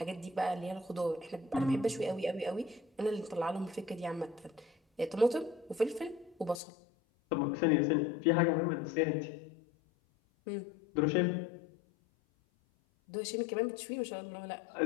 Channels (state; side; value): drops out; right; at 6.6 s